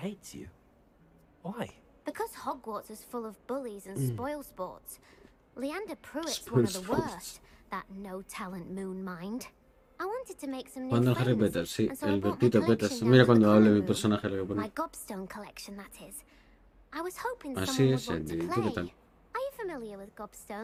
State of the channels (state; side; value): identical; both; correlation 1.00